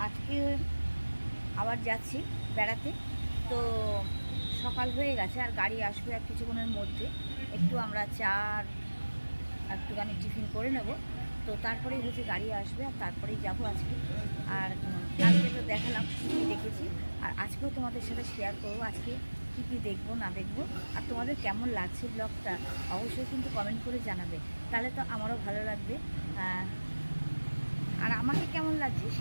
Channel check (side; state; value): both; inverted; correlation -1.00